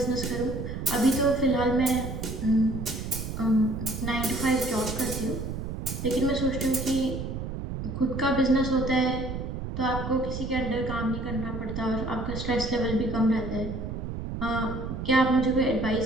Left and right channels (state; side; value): noise; right; rumble, 5 dB below the sound